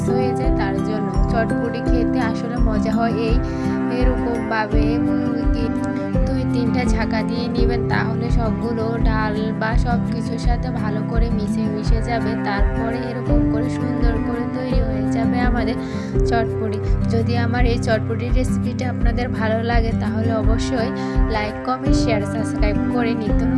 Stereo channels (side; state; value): both; identical; correlation 1.00